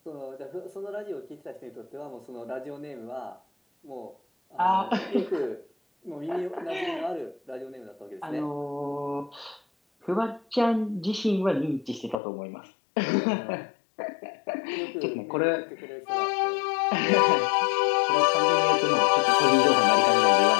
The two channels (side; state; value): right; drops out; at 12.2 s